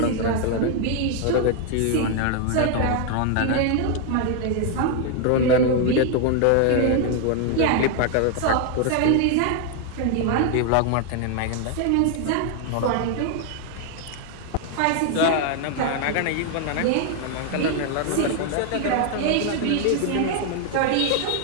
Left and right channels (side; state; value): both; different; correlation 0.00